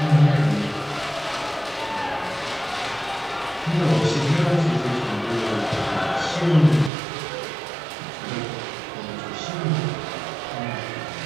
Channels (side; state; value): left; drops out; at 6.9 s